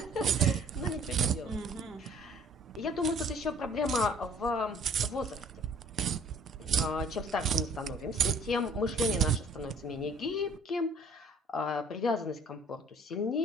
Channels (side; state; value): both; normal; correlation 0.55